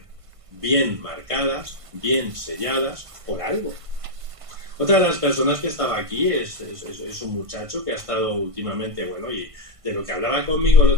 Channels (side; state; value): left; late; 1.5 ms